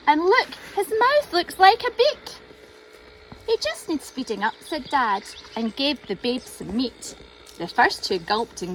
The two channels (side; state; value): both; identical; correlation 1.00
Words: and look, his mouth looks like a beak." "He just needs feeding up," said Dad, and gave the babe some meat. The first 2 gulped